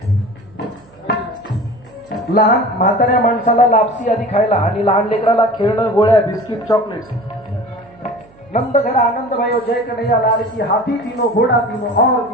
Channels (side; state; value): right; noise; hum, 27 dB below the sound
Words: लहान म्हाताऱ्या माणसाला लापसी आधी खायला आणि लहान लेकराला खेळणं, गोळ्या, बिस्किट, चॉकलेट्स. नंद घर आनंद भयो जय कन्हैया लाल की. हाथी तीनों, घोड़ा तीनों और